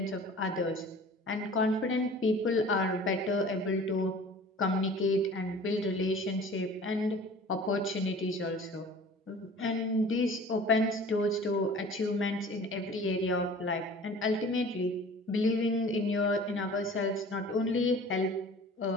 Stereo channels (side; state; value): both; normal; correlation 0.44